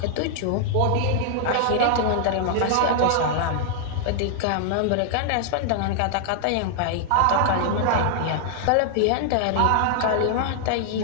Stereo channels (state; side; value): different; both; correlation -0.01